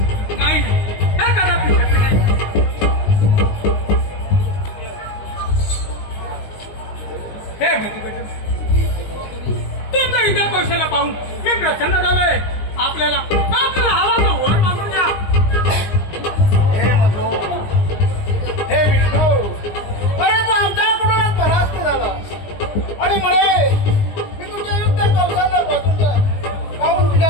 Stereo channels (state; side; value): late; right; 20 ms